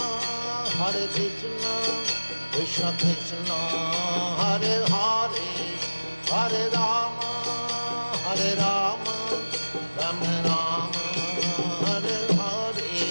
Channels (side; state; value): both; inverted; correlation -1.00